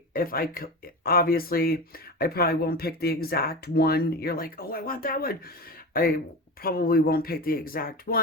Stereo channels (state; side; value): normal; both; correlation 0.26